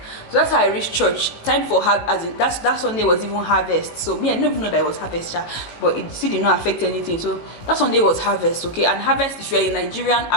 So that's how I reached church. Time for that Sunday was even harvest. So me, I didn't even know that it was harvest, but it still did not affect anything. So that Sunday was harvest, okay? And harvest, if you're a Nigerian,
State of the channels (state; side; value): late; right; 18 ms